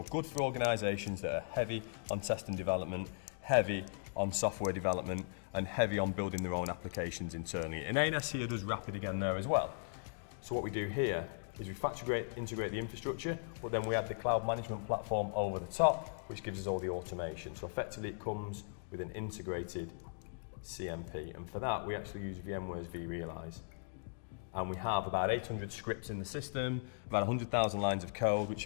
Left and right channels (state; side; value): silent; right; digital silence